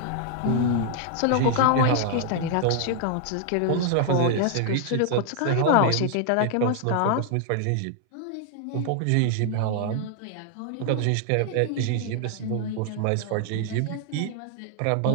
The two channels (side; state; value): both; different; correlation 0.00